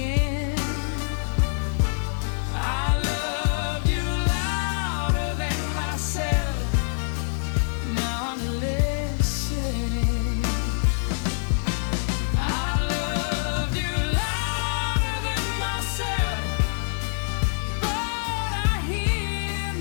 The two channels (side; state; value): right; silent; digital silence